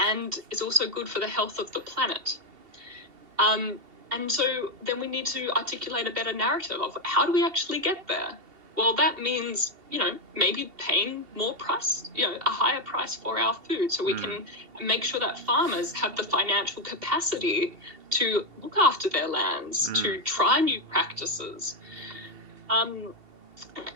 and is also good for the health of the planet. And so then we need to articulate a better narrative of how do we actually get there? Well, that means, you know, maybe paying more price, you know, a higher price for our food so we can make sure that farmers have the financial capacity to look after their lands, to try new practices.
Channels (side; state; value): left; late; 2.7 ms